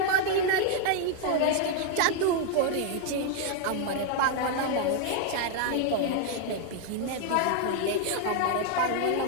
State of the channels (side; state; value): both; different; correlation 0.00